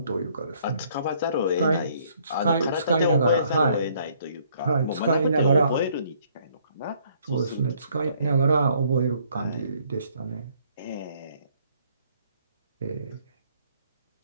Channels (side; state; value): both; inverted; correlation -0.64